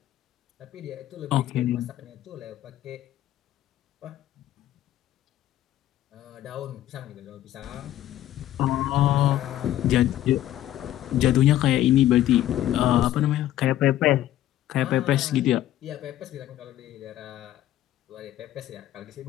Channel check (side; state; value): right; quieter; 13.1 dB